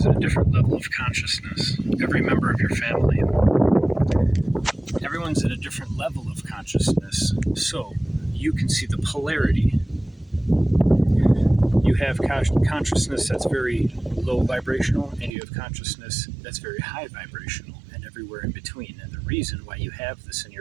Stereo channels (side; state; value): left; drops out; at 15.3 s